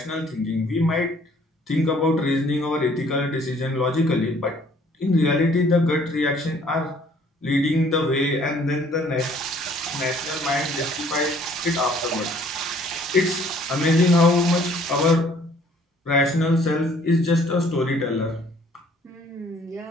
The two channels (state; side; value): normal; both; correlation 0.59